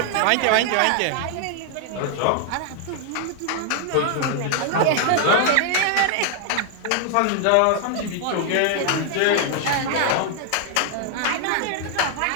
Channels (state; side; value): different; both; correlation 0.00